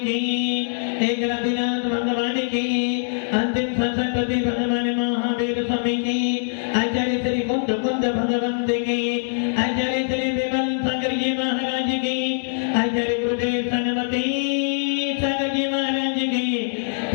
की एक रतिनाथ भगवान की अंतिम सरस्वती भगवान महावीर स्वामी की आचार्य श्री कुंद कुंद भगवंत की आचार्य श्री विमल सागर जी महाराज की आचार्य गुरुदेव सनमती सागर जी महाराज की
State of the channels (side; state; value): right; silent; digital silence